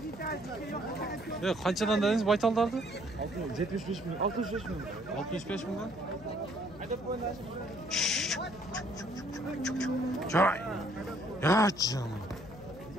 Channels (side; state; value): left; noise; hum, 17 dB below the sound